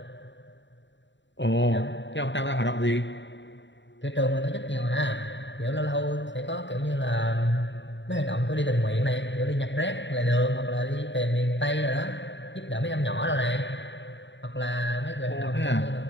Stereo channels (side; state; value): right; late; 0.53 ms